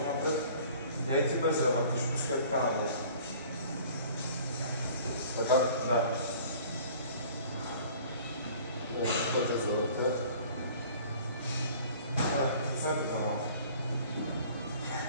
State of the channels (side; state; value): both; inverted; correlation -0.49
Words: напред. Я и ти без да вътреш. Пускай така надолу. Така? Да. Пътя за вътре. Пуснете това малко.